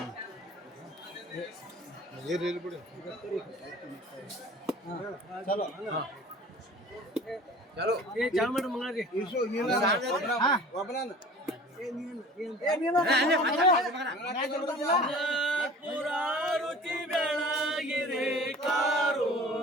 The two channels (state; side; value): normal; both; correlation 0.44